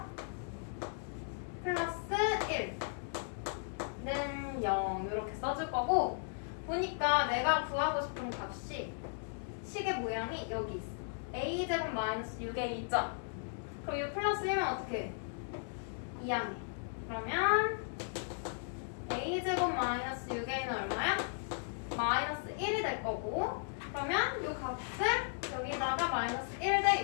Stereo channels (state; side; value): silent; right; digital silence